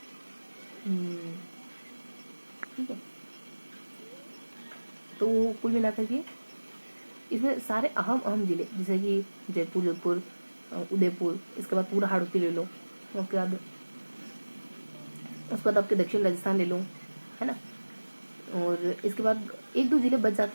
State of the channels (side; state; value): both; inverted; correlation -1.00